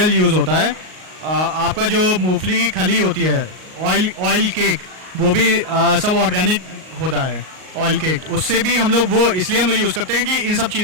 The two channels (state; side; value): late; left; 38 ms